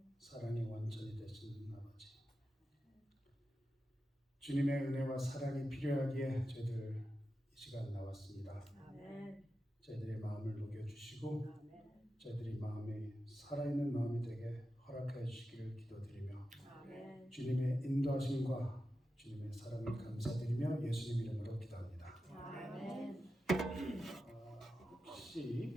사랑의 원천이 되시는 아버지, 주님의 은혜와 사랑이 필요하기에 저희들 이 시간 나왔습니다. 아멘. 저희들의 마음을 녹여주시고 저희들이 마음이 살아있는 마음이 되게 허락하여 주시기를 기도드리며 아멘. 주님의 인도하심과 주님의 사랑을 감사드리며 예수님 이름으로 기도합니다. 아멘. 혹시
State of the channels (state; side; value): normal; both; correlation 0.91